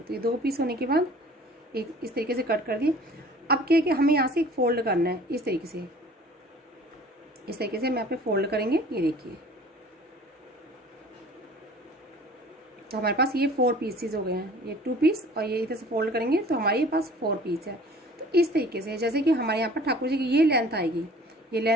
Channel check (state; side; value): normal; both; correlation 0.48